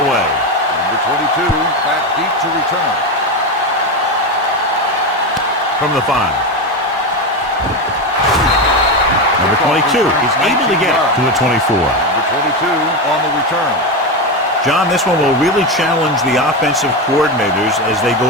away. Number 22 back deep to return. From the 5. Number 22 is able to get to the 24. Number 22 on the return. John, this one will really challenge the offensive coordinators as they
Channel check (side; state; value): both; normal; correlation 0.15